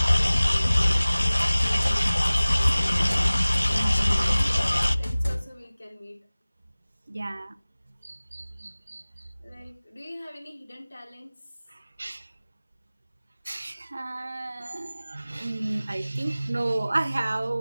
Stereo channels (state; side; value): inverted; both; correlation -0.99